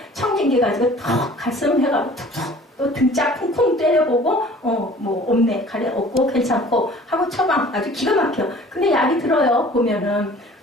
청진기 가지고 턱 가슴 해가지고 툭툭 또 등짝 쿵쿵 때려보고 뭐 없네 가래 없고 괜찮고 하고 처방 아주 기가 막혀. 근데 약이 들어요. 보면은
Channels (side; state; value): both; normal; correlation 0.49